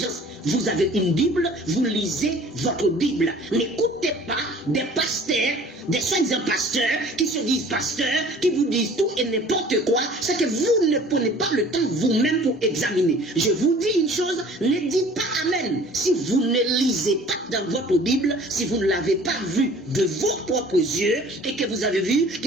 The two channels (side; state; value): both; normal; correlation 0.49